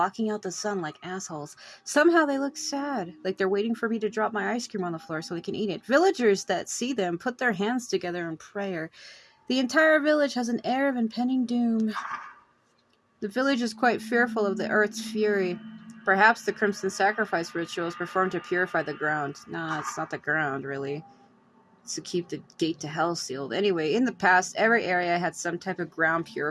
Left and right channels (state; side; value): identical; both; correlation 1.00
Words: out the sun like assholes. Somehow they look sad, like they're waiting for me to drop my ice cream on the floor so they can eat it. Villagers that see them put their hands together in prayer. The entire village has an air of impending doom. The village is quite fearful of the earth's fury. Perhaps the crimson sacrifice ritual is performed to purify the ground. Nah, it's not the ground, really. To keep the gate to hell sealed. Anyway, in the past, every area had some type of ground